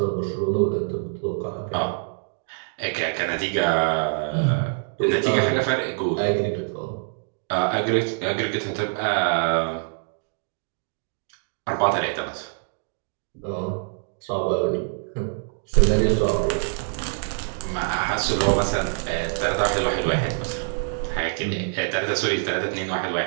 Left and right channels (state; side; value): silent; left; digital silence